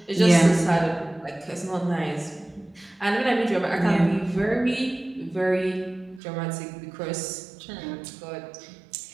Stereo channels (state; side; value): drops out; left; at 6.2 s